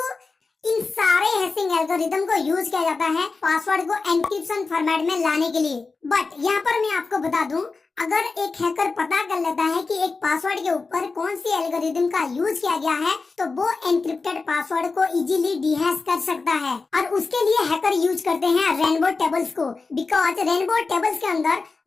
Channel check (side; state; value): right; quieter; 4.1 dB